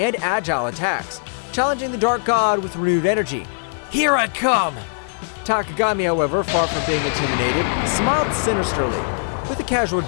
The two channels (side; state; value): right; silent; digital silence